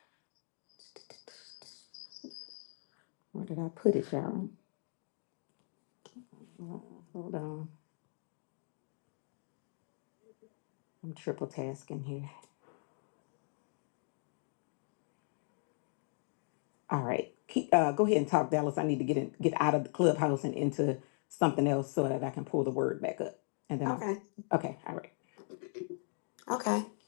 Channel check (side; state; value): right; silent; 53 dB below the other